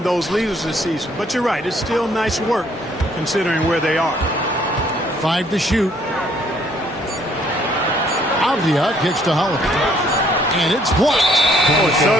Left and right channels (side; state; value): both; normal; correlation 0.64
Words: those leaders this season. But you're right, it's still nice work considering where they are. 5 to shoot. Avdia kicks to Holiday. And it's blocked. Boy,